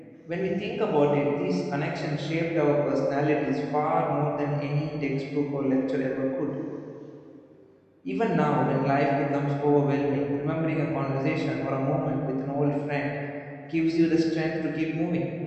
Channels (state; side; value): identical; both; correlation 1.00